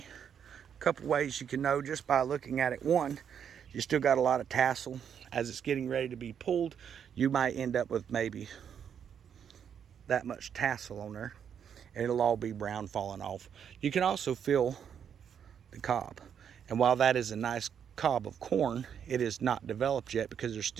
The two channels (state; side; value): quieter; left; 8.1 dB